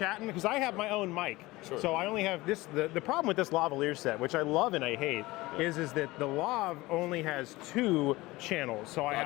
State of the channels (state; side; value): quieter; right; 20.0 dB